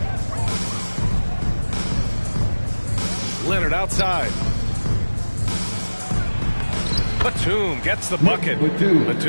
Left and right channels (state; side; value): inverted; both; correlation -1.00